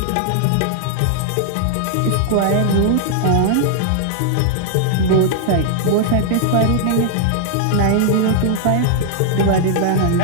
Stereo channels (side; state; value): both; different; correlation -0.01